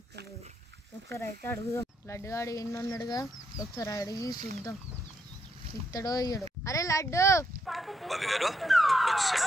ఇస్తలేడు. ఒకసారి అయితే అడుగుదాం. లడ్డుగాడు ఎన్ని ఉన్నాడుగా, ఒకసారి అడిగి చూద్దాం ఇస్తాడో ఇయ్యడు. అరే లడ్డు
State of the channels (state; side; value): normal; both; correlation 0.77